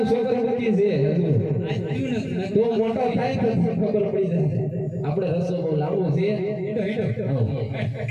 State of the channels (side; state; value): both; identical; correlation 1.00